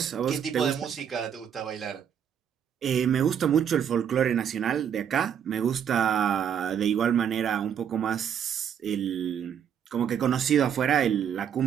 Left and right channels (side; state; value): left; quieter; 8.5 dB